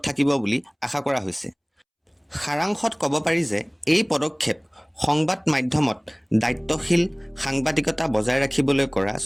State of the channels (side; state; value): both; identical; correlation 1.00